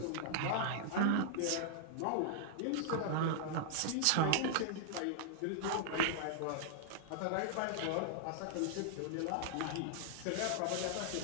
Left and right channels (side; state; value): both; different; correlation -0.01